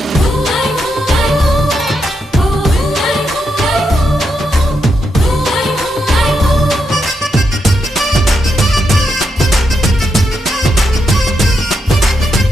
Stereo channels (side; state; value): both; normal; correlation 0.82